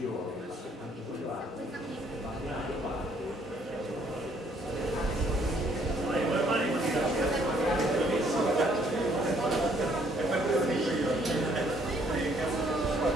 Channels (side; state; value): both; normal; correlation 0.65